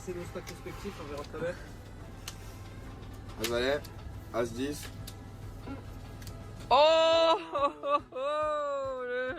nos stacks respectifs, on verra tout à l'heure. As valet, As 10. Oh,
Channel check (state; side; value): identical; both; correlation 1.00